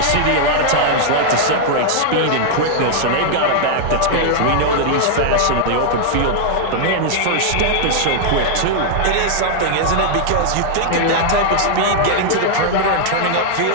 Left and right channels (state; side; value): different; both; correlation -0.01